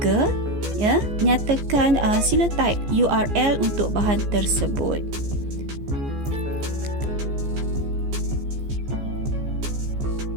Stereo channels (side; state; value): left; late; 14 ms